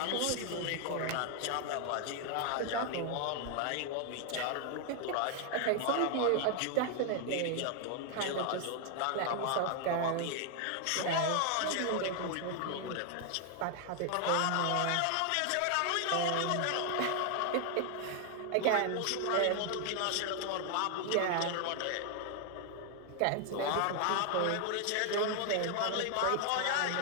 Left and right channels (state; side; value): different; both; correlation 0.00